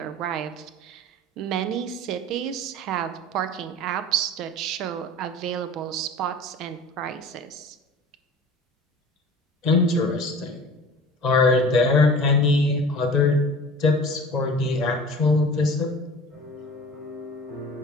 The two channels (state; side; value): normal; both; correlation 0.40